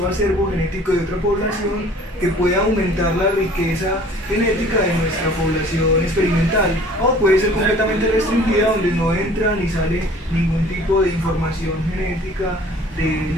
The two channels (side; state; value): both; normal; correlation 0.51